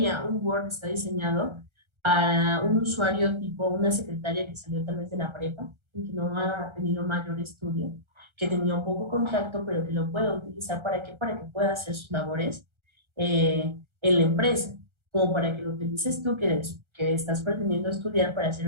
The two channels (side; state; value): left; late; 1.3 ms